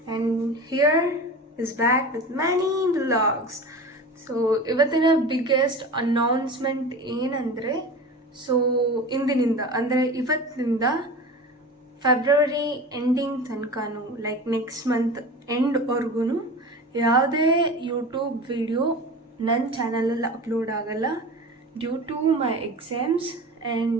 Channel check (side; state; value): both; normal; correlation 0.33